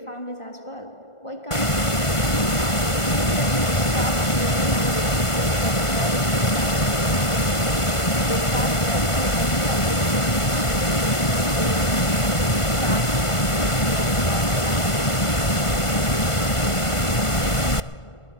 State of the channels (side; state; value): right; late; 1.5 ms